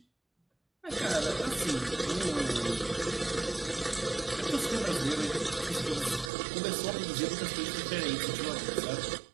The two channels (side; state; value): left; drops out; at 6.3 s